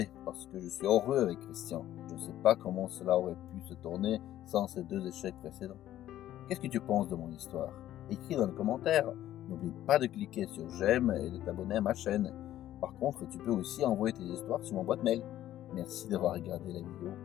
parce que je suis heureux avec Christian. Je ne sais pas comment cela aurait pu se tourner sans ces 2 échecs précédents. Qu'est-ce que tu penses de mon histoire? Écris dans les commentaires. N'oublie pas de cliquer sur j'aime et de t'abonner à ma chaîne. Par contre, tu peux aussi envoyer tes histoires sur mon boîte mail. Merci d'avoir regardé la vidéo.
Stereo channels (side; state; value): right; quieter; 12.9 dB